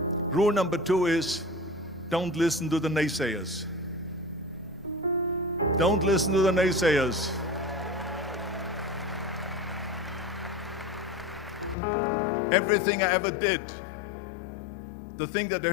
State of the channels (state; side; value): drops out; right; at 11.8 s